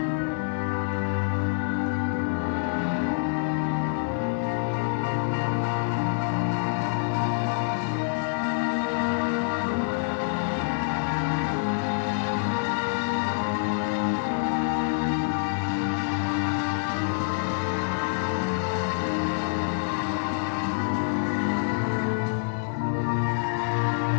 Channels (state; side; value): silent; right; 57 dB below the other